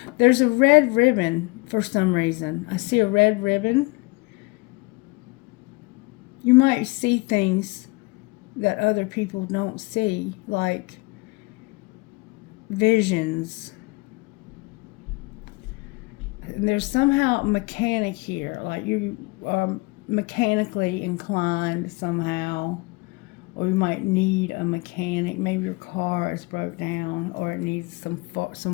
There's a red ribbon for some reason. I see a red ribbon. You might see things that other people don't see, like visions. And there's somehow a mechanic here, like you are mechanically inclined somehow, or you might need a mechanic. Maybe your car is broke down, or it needs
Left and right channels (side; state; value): right; quieter; 25.9 dB